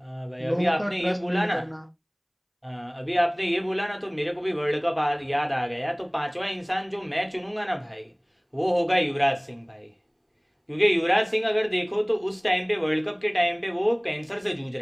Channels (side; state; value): both; identical; correlation 1.00